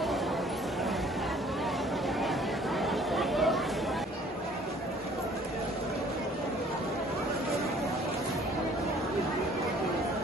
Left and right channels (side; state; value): both; normal; correlation 0.55